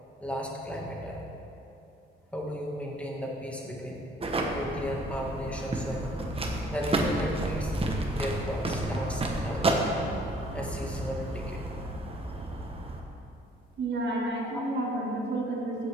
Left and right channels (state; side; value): normal; both; correlation 0.58